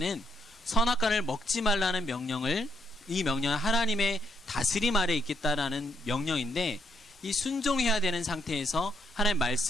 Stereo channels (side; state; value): both; normal; correlation 0.75